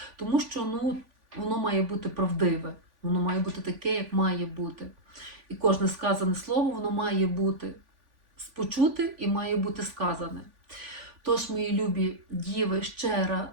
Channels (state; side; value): late; left; 3.5 ms